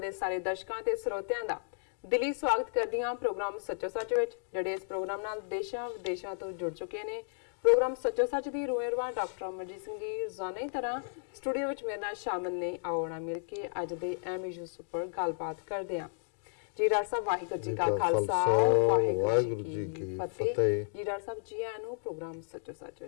ਦੇ ਸਾਰੇ ਦਰਸ਼ਕਾਂ ਤੇ ਸਰੋਤਿਆਂ ਦਾ ਦਿਲੀ ਸਵਾਗਤ ਕਰਦੀ ਹਾਂ ਪ੍ਰੋਗਰਾਮ ਸੱਚੋ ਸੱਚ ਵਿੱਚ, ਜਿਹੜੇ ਇਸ ਪ੍ਰੋਗਰਾਮ ਨਾਲ ਦੇਸ਼ਾਂ ਵਿਦੇਸ਼ਾਂ ਤੋਂ ਜੁੜ ਚੁੱਕੇ ਨੇ। ਪ੍ਰੋਗਰਾਮ ਸੱਚੋ ਸੱਚ ਦੀ ਰੂਹਰਵਾ ਡਾਕਟਰ ਅਮਰਜੀਤ ਸਿੰਘ ਜੀ ਰੋਜ਼ਾਨਾ ਦੀ ਤਰ੍ਹਾਂ ਸਟੂਡੀਓ ਵਿੱਚ ਮੇਰੇ ਨਾਲ ਸ਼ਾਮਲ ਨੇ। ਆਉਣਾ ਮਿਲ ਕੇ ਅੱਜ ਦੇ ਅਹਿਮ ਇਸ਼ੂਜ਼ ਉੱਪਰ ਗੱਲਬਾਤ ਕਰਦੇ ਹਾਂ। ਜੀ ਡਾਕਟਰ ਸਾਹਿਬ ਵਾਹਿਗੁਰੂ ਜੀ ਕਾ ਖਾਲਸਾ ਵਾਹਿਗੁਰੂ ਜੀ ਕੀ ਫਤਿਹ। ਜੀ ਡਾਕਟਰ ਸਾਹਿਬ ਜੀ ਆਇਆਂ ਨੂੰ ਪ੍ਰੋਗਰਾਮ ਸੱਚੋ ਸੱਚ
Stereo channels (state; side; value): silent; right; digital silence